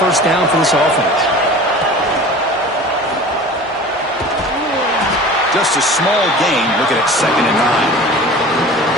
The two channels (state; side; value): normal; both; correlation 0.39